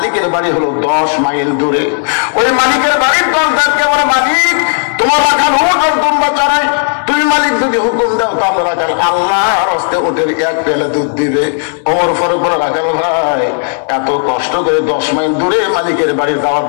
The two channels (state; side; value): silent; right; digital silence